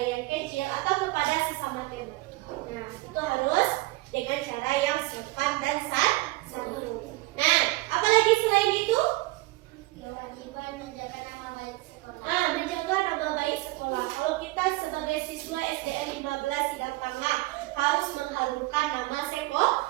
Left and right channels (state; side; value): quieter; left; 20.6 dB